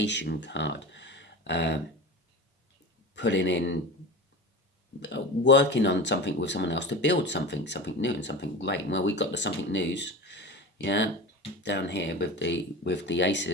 card. Putting in, working on something with someone else to build something new and something great. Well, we've got the something news, yeah, down here with the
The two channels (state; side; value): normal; both; correlation 0.30